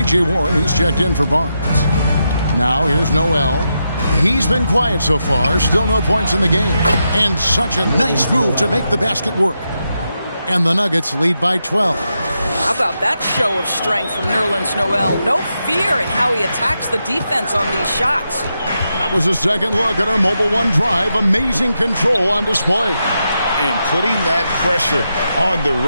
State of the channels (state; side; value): inverted; both; correlation -0.85